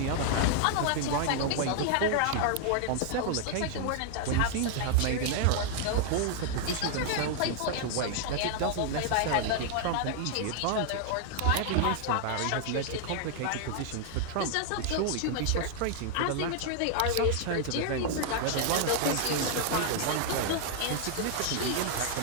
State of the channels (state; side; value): different; both; correlation 0.00